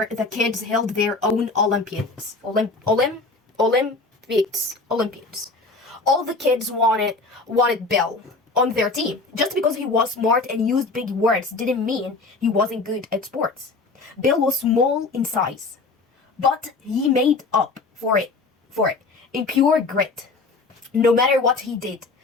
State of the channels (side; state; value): right; quieter; 3.7 dB